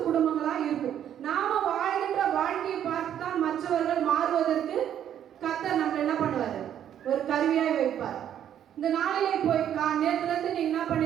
குடும்பங்களா இருக்கும். நாம வாழ்கின்ற வாழ்க்கையை பார்த்து தான் மற்றவர்கள் மாறுவதற்கு கர்த்தர் நம்ம என்ன பண்ணுவாரு? ஒரு கருவியாய் வைப்பார். இந்த நாளிலே போய் நேரத்துல இருந்து நீங்க என்ன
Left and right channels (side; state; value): left; quieter; 10.1 dB